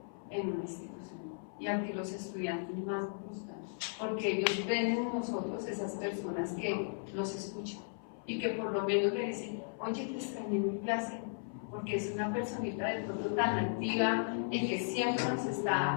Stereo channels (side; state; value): right; silent; 54 dB below the other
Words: en una institución y al que los estudiantes más buscan, porque ellos ven en nosotros esas personas que los escuchan y que por lo menos le dicen, oye, te extrañé en mi clase, porque es una personita de pronto tan activa y que siempre nos